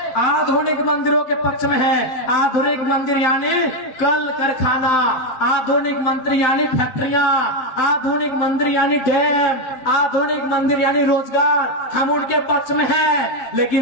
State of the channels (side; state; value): right; late; 7.8 ms